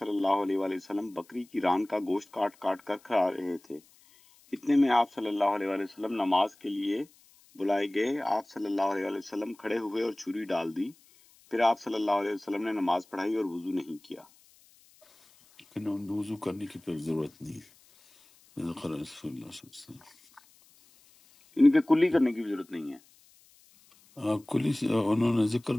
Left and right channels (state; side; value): noise; left; hiss, 29 dB below the sound